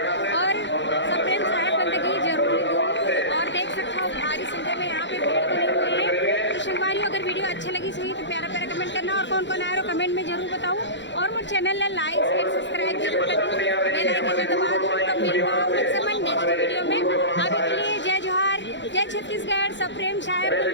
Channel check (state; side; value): late; right; 0.53 ms